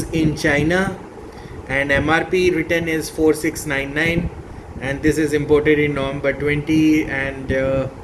in China, and MRP written is 4699, and this is imported in November 20, and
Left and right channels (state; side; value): identical; both; correlation 1.00